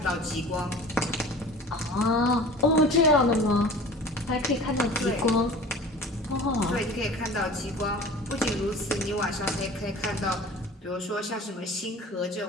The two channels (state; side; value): normal; both; correlation 0.42